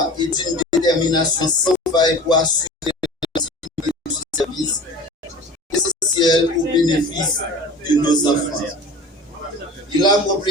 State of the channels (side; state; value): both; normal; correlation 0.38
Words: et d'une détermination sans faille pour assurer le service essentiel au bénéfice de nos enfants. Il